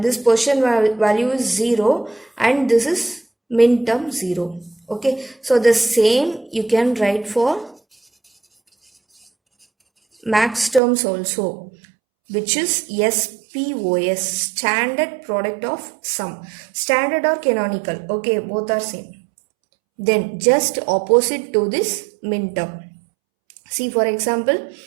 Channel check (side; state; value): left; drops out; at 10.8 s